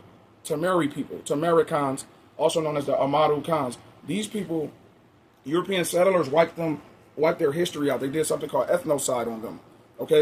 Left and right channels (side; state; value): both; identical; correlation 1.00